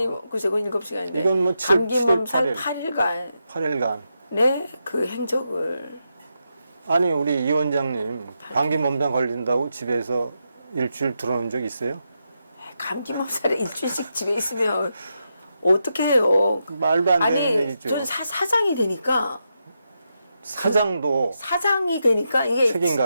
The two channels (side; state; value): both; inverted; correlation -0.85